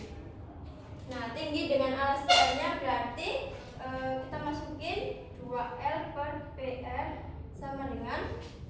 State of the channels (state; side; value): identical; both; correlation 1.00